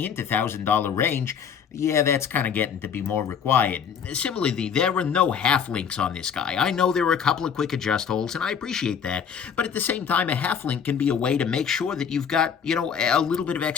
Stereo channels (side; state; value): right; quieter; 7.3 dB